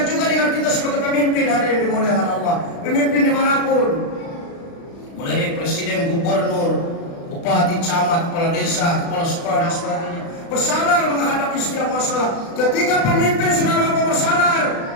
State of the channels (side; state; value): right; late; 36 ms